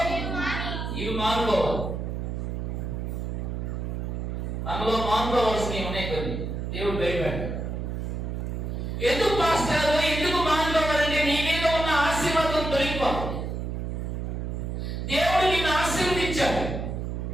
ఇవి మానుకోవాలి. మనలో మానుకోవాల్సినవి ఉన్నాయి కొన్ని. దేవుడు భయపడ్డాడు. ఎందుకు పాస్టర్, ఎందుకు మానుకోవాలంటే నీ మీద ఉన్న ఆశీర్వాదం తొలగిపోతుంది. దేవుడు నిన్ను ఆశీర్వదించాడు,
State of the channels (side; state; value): right; noise; hum, 3 dB below the sound